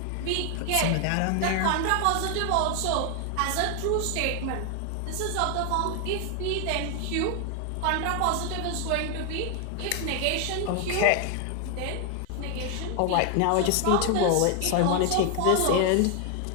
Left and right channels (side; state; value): both; different; correlation 0.00